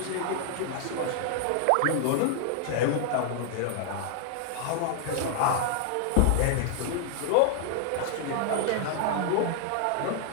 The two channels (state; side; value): different; both; correlation 0.00